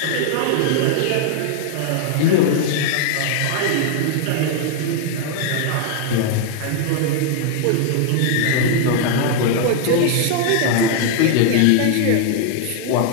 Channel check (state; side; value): different; both; correlation 0.00